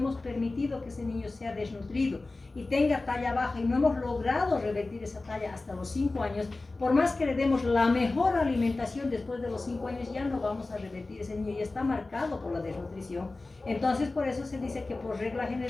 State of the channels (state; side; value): quieter; right; 3.3 dB